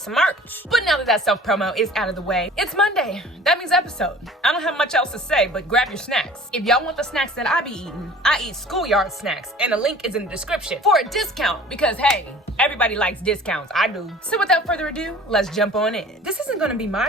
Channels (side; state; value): both; normal; correlation 0.46